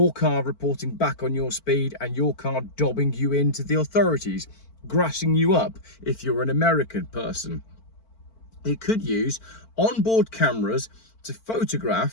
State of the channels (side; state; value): right; late; 4.5 ms